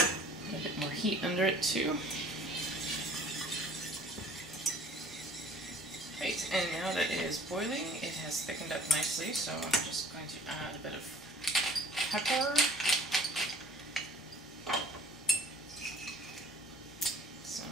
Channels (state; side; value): normal; both; correlation 0.54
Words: A bit more heat under it too. Right, and now that it is boiling, it has thickened up nicely, so I'm just going to add a bit of pepper.